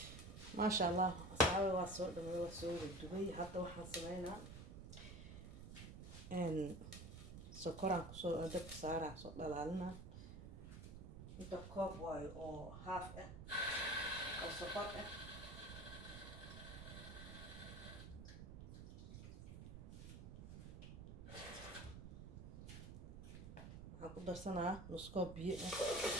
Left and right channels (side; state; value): right; noise; rumble, 11 dB below the sound